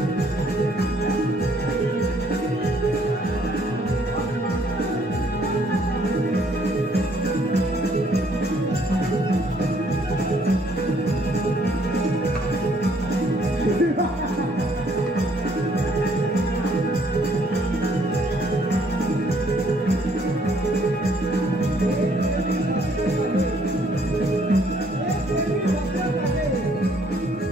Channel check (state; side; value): normal; both; correlation 0.65